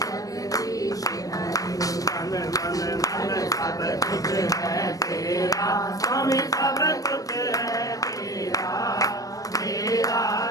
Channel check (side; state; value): right; late; 0.17 ms